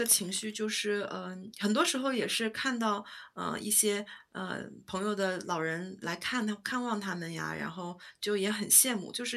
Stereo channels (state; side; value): identical; both; correlation 1.00